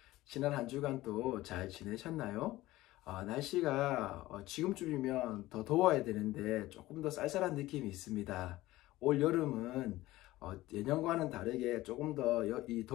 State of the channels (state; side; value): quieter; right; 17.3 dB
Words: 지난 한 주간 또 잘 지내셨나요? 날씨가 지금쯤이면 더 더워야 되는데 조금 더 쌀쌀한 느낌이 있습니다. 올 여름은 예년과는 다르게 조금 더 이